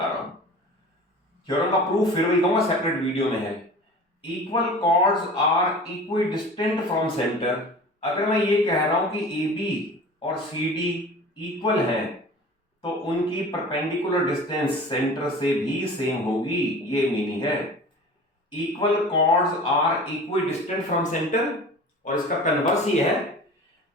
रहा हूं। थ्योरम का प्रूफ फिर भी कहूंगा, सेपरेट वीडियो में है। Equal chords are equidistant from centre, अगर मैं ये कह रहा हूं कि AB और CD इक्वल है तो उनकी परपेंडिकुलर डिस्टेंस सेंटर से भी सेम होगी, ये मीनिंग है। Equal chords are equidistant from centre, और इसका कन्वर्स ये है,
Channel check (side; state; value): both; normal; correlation 0.39